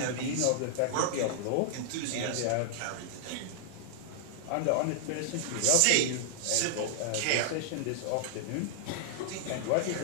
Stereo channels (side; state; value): both; different; correlation -0.01